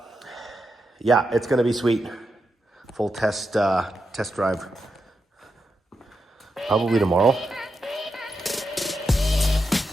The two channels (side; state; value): both; normal; correlation 0.86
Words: yeah, it's gonna be sweet. Full test drive probably tomorrow.